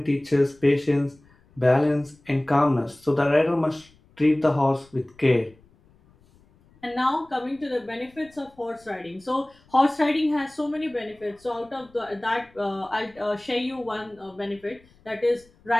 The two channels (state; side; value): noise; left; rumble, 30 dB below the sound